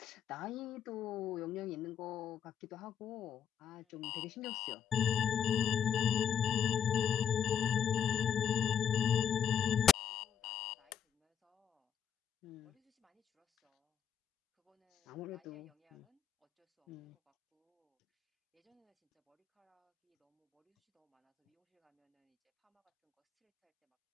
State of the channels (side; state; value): right; quieter; 8.2 dB